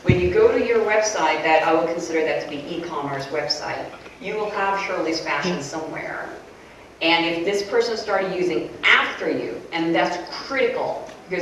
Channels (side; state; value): both; identical; correlation 1.00